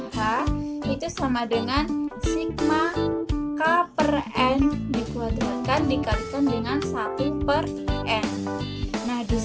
H, itu sama dengan sigma K/n dikuadratkan dikalikan dengan 1/n. Nah, di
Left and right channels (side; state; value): both; identical; correlation 1.00